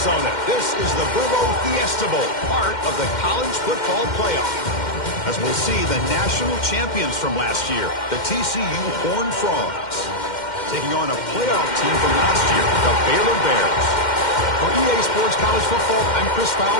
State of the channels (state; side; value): late; right; 2.1 ms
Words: This is the Burbo Fiesta Bowl, part of the college football playoff. As we'll see the national champions from last year, the TCU Horned Frogs, taking on a playoff team from last year, the Baylor Bears. For EA Sports College Football, I'm Chris